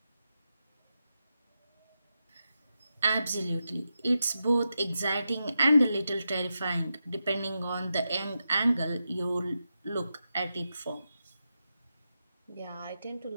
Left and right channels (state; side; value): inverted; both; correlation -0.88